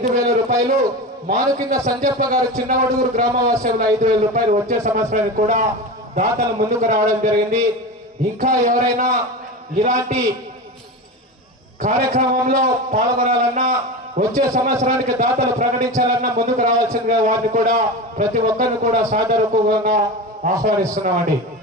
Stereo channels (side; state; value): both; normal; correlation 0.25